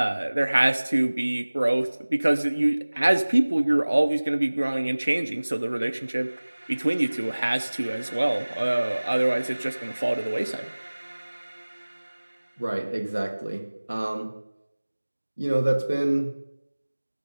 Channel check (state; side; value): inverted; both; correlation -1.00